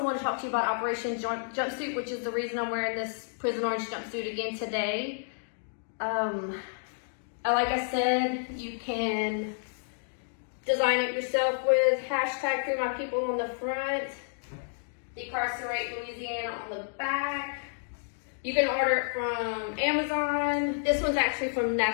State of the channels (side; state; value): right; silent; digital silence